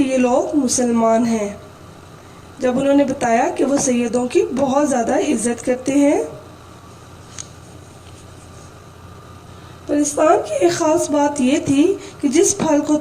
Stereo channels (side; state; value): both; identical; correlation 1.00